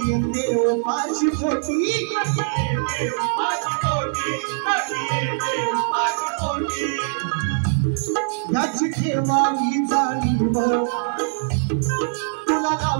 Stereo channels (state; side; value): silent; left; 61 dB below the other